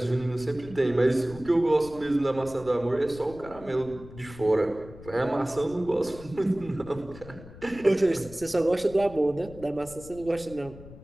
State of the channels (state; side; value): noise; left; rumble, 17 dB below the sound